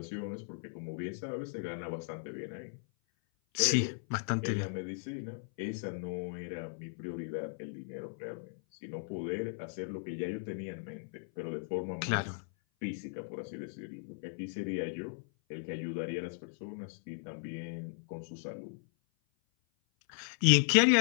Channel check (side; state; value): right; silent; 54 dB below the other